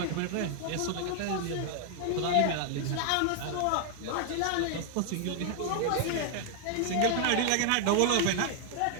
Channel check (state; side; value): different; both; correlation 0.00